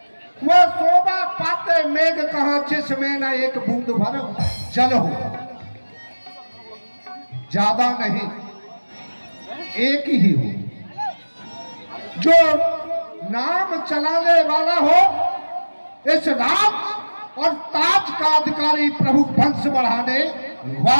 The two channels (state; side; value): inverted; both; correlation -1.00